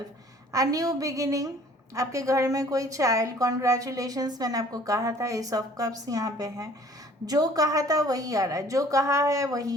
a new beginning. आपके घर में कोई चाइल्ड, कॉन्ग्रेचुलेशंस, मैंने आपको कहा था। एस ऑफ कप्स यहाँ पे है, जो कहा था वही आ रहा है, जो कहा है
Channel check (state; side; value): normal; both; correlation 0.53